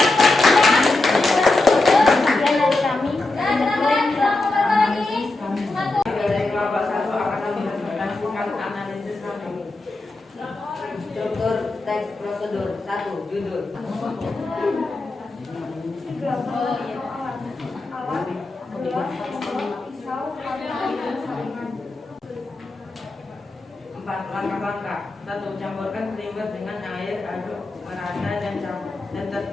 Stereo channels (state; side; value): quieter; right; 3.0 dB